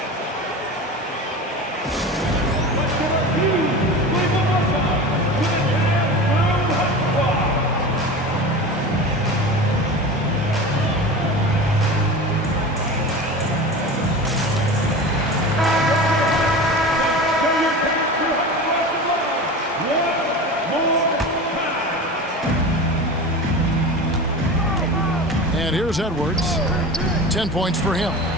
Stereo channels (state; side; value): normal; both; correlation 0.31